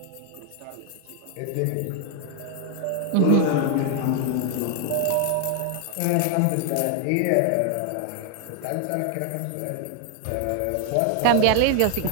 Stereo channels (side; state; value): both; different; correlation 0.00